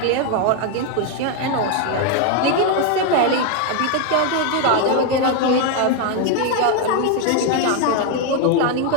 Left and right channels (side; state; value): both; different; correlation 0.01